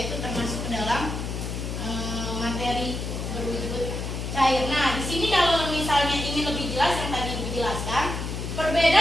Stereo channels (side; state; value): left; noise; hum, 4 dB below the sound